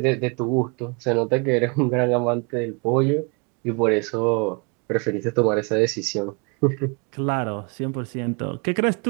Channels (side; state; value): left; quieter; 33.0 dB